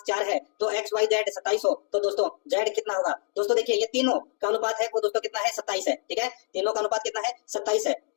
है तो x y z 27 हो, तो दोस्तों z कितना होगा। दोस्तों देखिए ये तीनों का अनुपात है वो दोस्तों कितना है 27 है, ठीक है, तीनों का अनुपात कितना है 27 है।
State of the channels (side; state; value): right; silent; digital silence